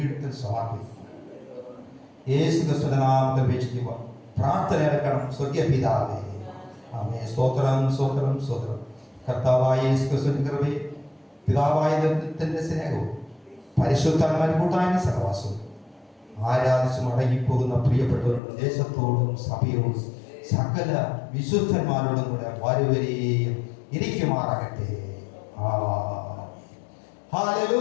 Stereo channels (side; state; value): right; drops out; at 18.4 s